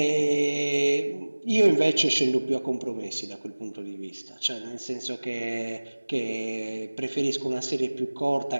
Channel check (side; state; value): both; inverted; correlation -1.00